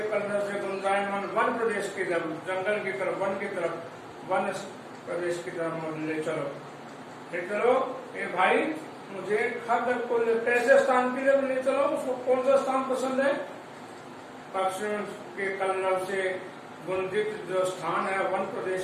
कलरव से गुंजायमान वन प्रदेश की तरफ, जंगल की तरफ, वन की तरफ, वन प्रदेश की तरफ ले चलो। ले चलो ए भाई, मुझे खगकुल कैसे स्थान के लिए ले चलो, उसको कौन सा स्थान पसंद है? पक्षियों के कलरव से गुंजित जो स्थान है, वन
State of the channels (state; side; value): identical; both; correlation 1.00